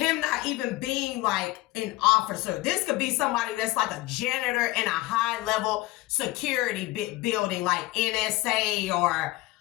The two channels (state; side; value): quieter; right; 18.8 dB